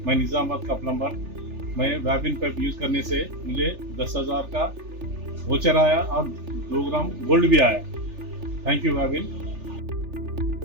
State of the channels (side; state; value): left; late; 3.4 ms